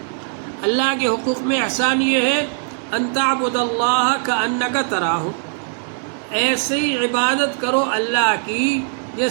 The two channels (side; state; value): left; silent; 66 dB below the other